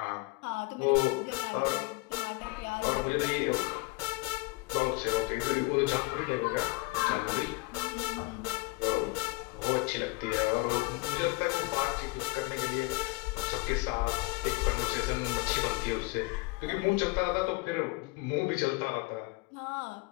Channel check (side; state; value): right; quieter; 24.8 dB